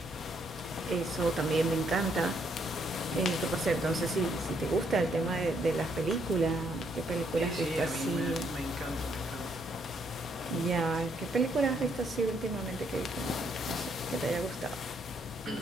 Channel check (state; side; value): normal; both; correlation 0.72